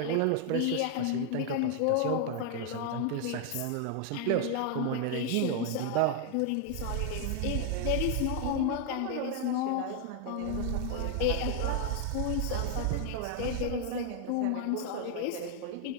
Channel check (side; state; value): both; different; correlation 0.00